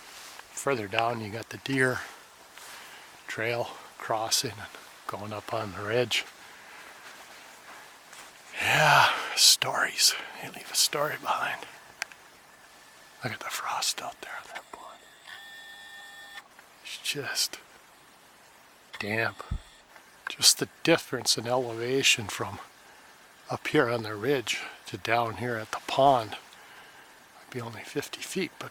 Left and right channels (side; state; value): both; identical; correlation 1.00